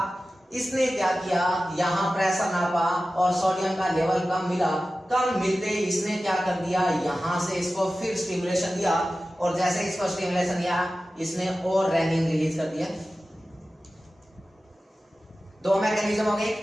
इसने क्या किया, यहाँ प्रेशर नापा और सोडियम का लेवल कम मिला। कम मिलते ही इसने क्या कर दिया, यहाँ से इसको फिर स्टिमुलेशन दिया, और जैसे इसको स्टिमुलेशन दिया इसने और रेनिन रिलीज कर दिया। दो मैकेनिज्म हो गए।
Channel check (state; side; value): normal; both; correlation 0.95